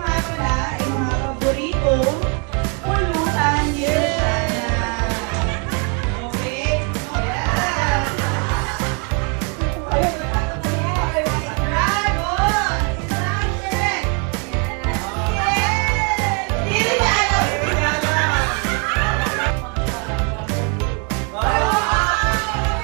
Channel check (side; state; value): left; quieter; 36.1 dB